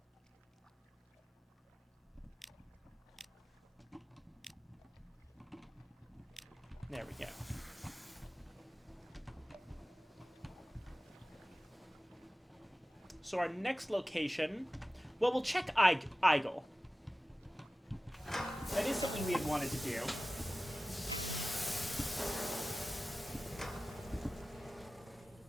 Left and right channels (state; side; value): normal; both; correlation 0.96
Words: There we go. So our next location... Well, we'll check Eigel. That is something we had wanted to do.